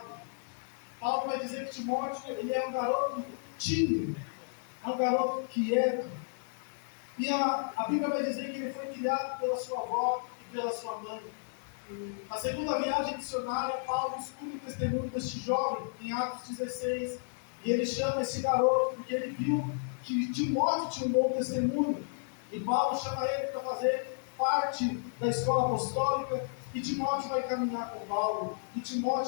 Paulo vai dizer que Timóteo ele é um garoto tímido, é um garoto quieto. E a Bíblia vai dizer que ele foi criado pela sua avó e pela sua mãe. Na segunda viagem missionária, Paulo escuta o testemunho deste jovem, em Atos 16, e ele chama esse garoto porque ele viu que Timóteo tinha um bom testemunho. E Paulo chama ele para fazer parte da escola apostólica, e Timóteo vai caminhar com Paulo, e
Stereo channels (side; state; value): right; silent; digital silence